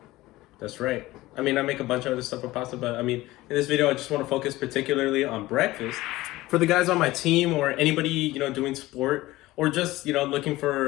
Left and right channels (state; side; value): quieter; right; 18.1 dB